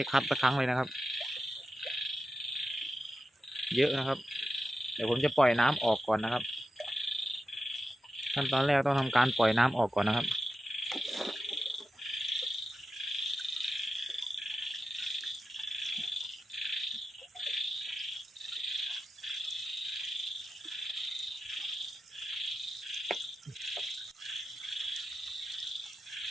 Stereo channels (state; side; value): normal; both; correlation 0.91